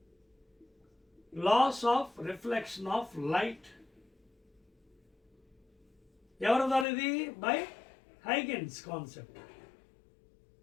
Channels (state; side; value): drops out; right; at 6.9 s